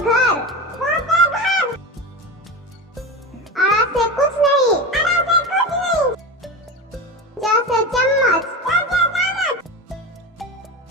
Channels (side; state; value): both; normal; correlation 0.24